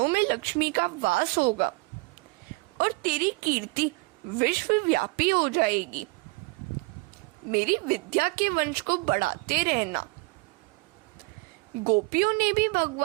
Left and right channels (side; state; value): left; quieter; 26.1 dB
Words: में लक्ष्मी का वास होगा और तेरी कीर्ति विश्वव्यापी हो जाएगी। मेरी विद्या के वंश को बढ़ाते रहना। गोपियों ने भी